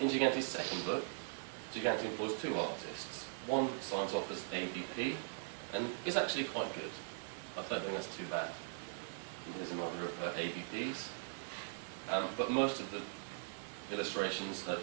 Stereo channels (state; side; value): silent; left; digital silence